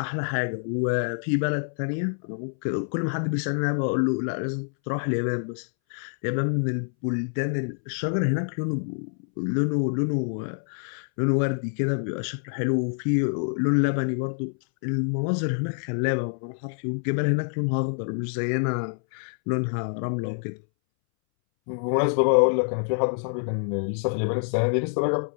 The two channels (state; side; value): silent; right; 61 dB below the other